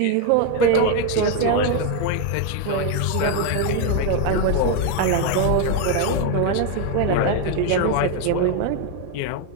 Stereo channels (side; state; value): both; different; correlation 0.01